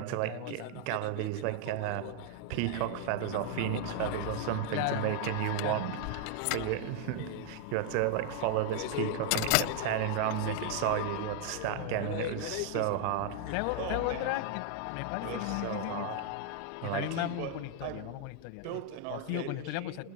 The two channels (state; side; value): different; both; correlation 0.00